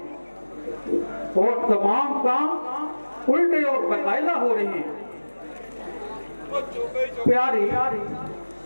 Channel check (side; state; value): both; inverted; correlation -1.00